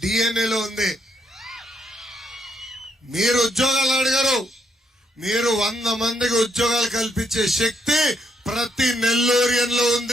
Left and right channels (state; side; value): normal; both; correlation 0.75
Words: డిఎన్ఏలో ఉంది. మీరు ఉద్యోగాలు అడిగారు, మీరు 100 మందికి ఉద్యోగాలు కల్పించే శక్తి ప్రతి నెల్లూరియన్లో